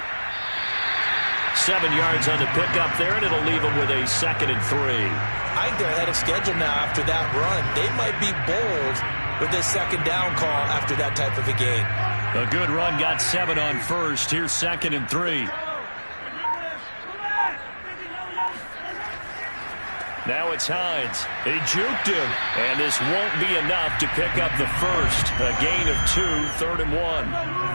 7 yards on the pickup there, and it'll leave them with a 2nd and 3. I think they're ahead of schedule now after that run. They might be bold with this 2nd down call after that type of a game. A good run, got 7 on first. Here's 2nd and 3. Now it's Hines. He juked him, and this won't be enough to pick up the first. A gain of 2, 3rd and 1.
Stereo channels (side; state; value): both; inverted; correlation -1.00